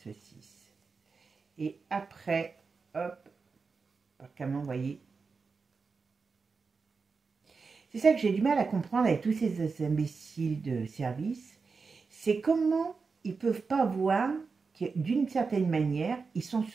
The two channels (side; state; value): left; quieter; 4.7 dB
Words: Et après, hop, comment vous voyez. C'est ça que j'ai du mal à comprendre avec tous ces imbéciles de service. C'est comment ils ne peuvent pas voir que d'une certaine manière, ils sont